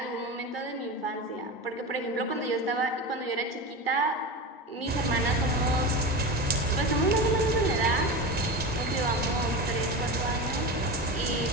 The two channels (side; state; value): both; normal; correlation 0.24